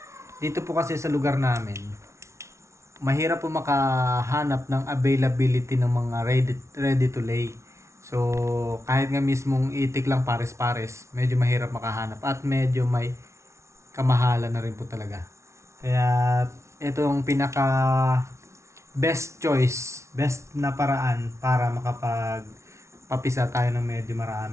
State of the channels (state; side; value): late; left; 0.13 ms